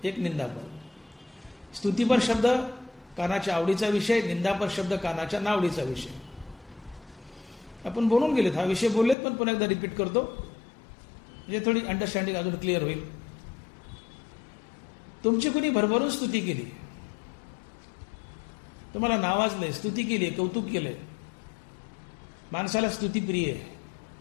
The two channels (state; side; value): drops out; right; at 9.2 s